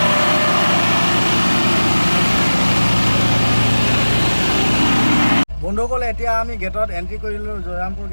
বন্ধুসকল, এতিয়া আমি গেটত এণ্ট্ৰি কৰিলোঁ, জয়ৰামপুৰ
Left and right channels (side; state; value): both; inverted; correlation -1.00